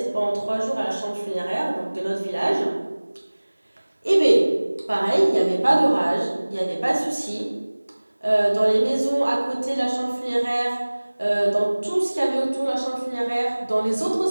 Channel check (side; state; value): both; inverted; correlation -1.00